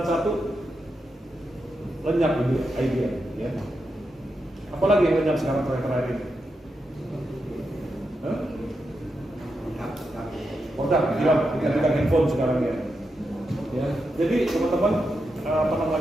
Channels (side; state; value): both; normal; correlation 0.86